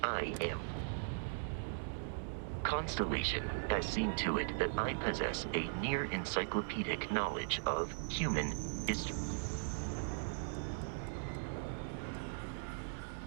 I am. Constellation has seen to it that I possess a near encyclopedic knowledge of human history.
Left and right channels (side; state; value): left; silent; 52 dB below the other